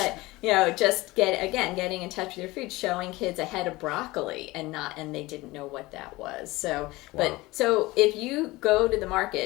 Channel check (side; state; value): right; quieter; 20.5 dB